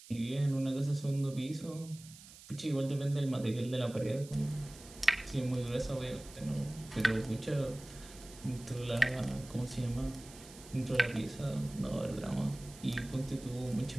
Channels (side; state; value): right; noise; hiss, 18 dB below the sound